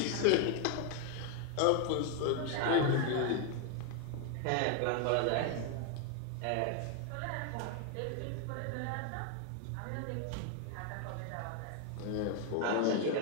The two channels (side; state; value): both; different; correlation 0.01